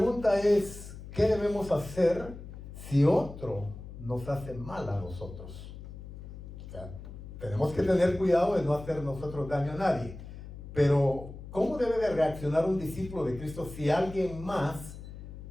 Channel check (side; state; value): left; noise; hum, 13 dB below the sound